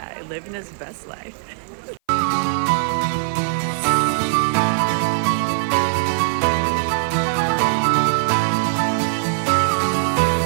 living his best life.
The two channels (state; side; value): silent; left; 57 dB below the other